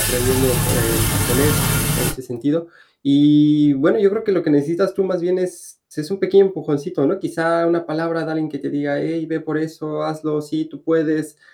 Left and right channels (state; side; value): identical; both; correlation 1.00